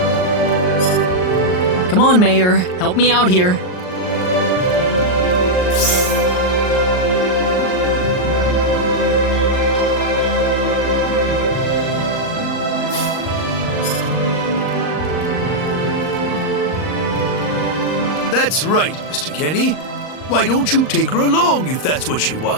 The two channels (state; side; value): late; right; 39 ms